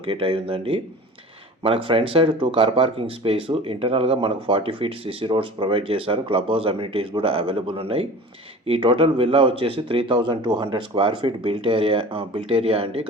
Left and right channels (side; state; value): both; normal; correlation 0.39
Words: అయి ఉందండి. మనకు front side 2 car parking space, ఇంటర్నల్గా మనకు 40 ఫీట్ సిసి రోడ్స్ ప్రొవైడ్ చేశారు. క్లబ్ హౌస్ అమ్యూనిటీస్ కూడా అవైలబుల్ ఉన్నాయి. ఈ టోటల్ విల్లా వచ్చేసి 3200 స్క్వేర్ ఫీట్ బిల్ట్ ఏరియా అండి.